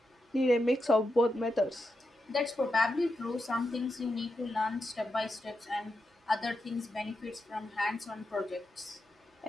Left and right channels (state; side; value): normal; both; correlation 0.87